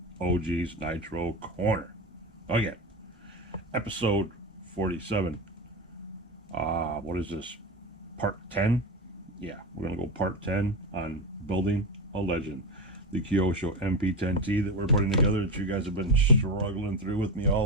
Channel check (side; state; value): both; normal; correlation 0.19